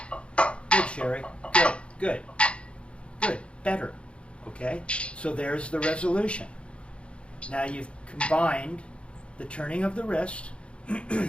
Sherry. Good, good, good, better. Okay, so there's the resolution. Now you've combined the turning of the wrist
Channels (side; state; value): right; late; 0.059 ms